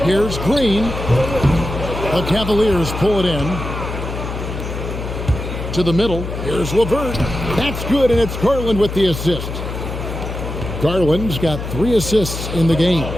Here's Green. The Cavaliers pull it in. To the middle. Here's LeVert. That's good, and it's Garland with the assist. Garland's got 3 assists in the game.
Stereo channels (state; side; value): noise; left; hum, 6 dB below the sound